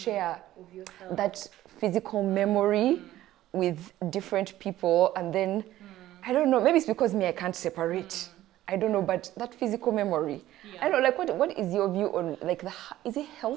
that physical memory with different people, and then I don't know, maybe it's because I can't separate. I don't know, but that physical memory, I don't know, like, what is your view on, like, is it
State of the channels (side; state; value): left; quieter; 14.4 dB